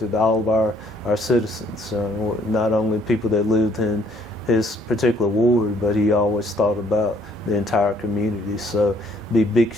all of our citizens, not only people that lived in his particular ward, but he always thought about the entire community. So be big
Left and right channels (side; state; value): both; normal; correlation 0.64